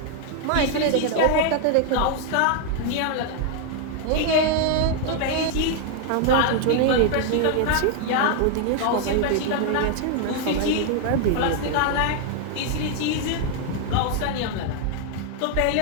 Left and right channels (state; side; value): different; both; correlation 0.00